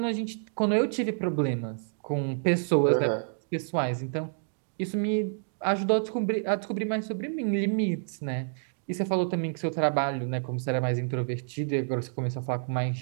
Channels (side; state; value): left; silent; digital silence